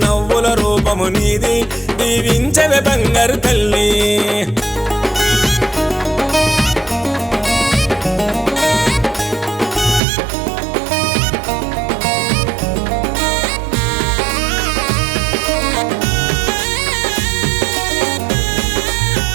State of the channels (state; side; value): drops out; left; at 10.0 s